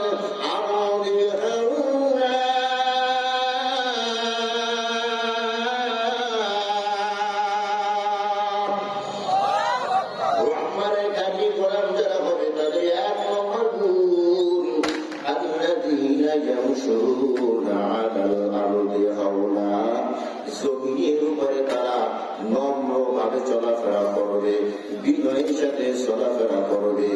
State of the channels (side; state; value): both; identical; correlation 1.00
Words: আরদি হাওনা, রহমানের খাঁটি গোলাম যারা হবে তাদের এক নম্বর গুণ আল্লাযীনা ইয়ামশুনা আলাল আরদি হাওলা, জমিনের উপরে তারা নম্রভাবে চলাফেরা করবে, বিনয়ের সাথে চলাফেরা করবে।